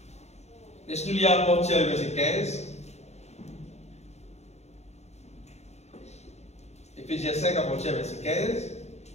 laisse-nous lire à partir du verset 15. Éphésiens 5 à partir du verset 15.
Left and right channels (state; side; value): late; right; 0.32 ms